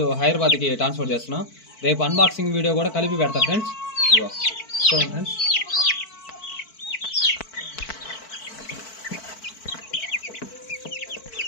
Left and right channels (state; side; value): late; right; 4.5 ms